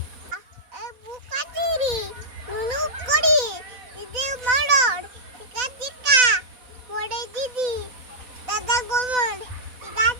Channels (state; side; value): late; left; 4.0 ms